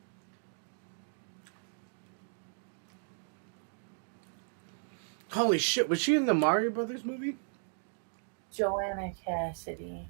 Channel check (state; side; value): silent; left; digital silence